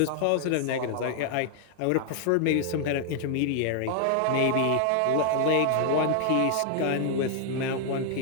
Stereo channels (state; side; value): different; both; correlation 0.00